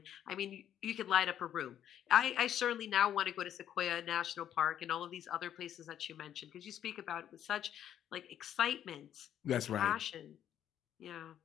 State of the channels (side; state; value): right; quieter; 10.4 dB